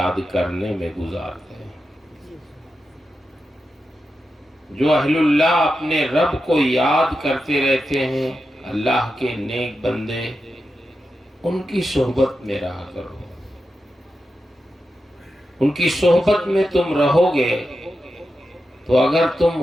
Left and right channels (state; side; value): normal; both; correlation 0.89